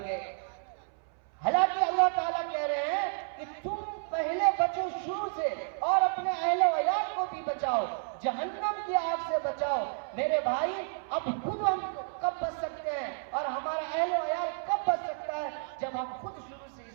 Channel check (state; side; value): silent; left; 57 dB below the other